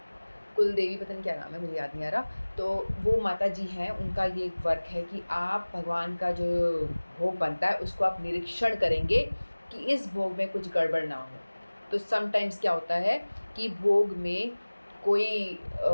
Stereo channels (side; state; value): both; inverted; correlation -1.00